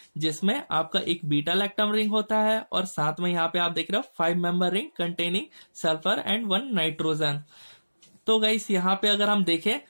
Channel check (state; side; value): inverted; both; correlation -1.00